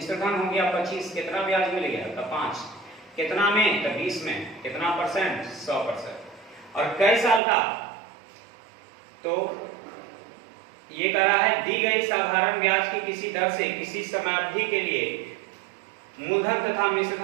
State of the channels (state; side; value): drops out; left; at 7.4 s